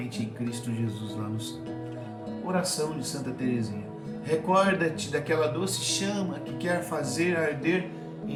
em Cristo Jesus lá no céu. Oração de Santa Teresinha. Recorda-te daquela doce chama que quer fazer arder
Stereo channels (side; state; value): both; identical; correlation 1.00